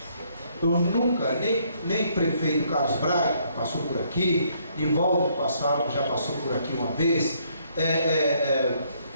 Eu nunca, nem prefeito Carlos Braga passou por aqui, Nivaldo já passou por aqui uma vez,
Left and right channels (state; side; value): inverted; both; correlation -0.68